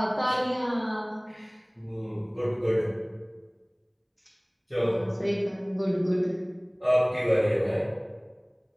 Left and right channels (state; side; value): identical; both; correlation 1.00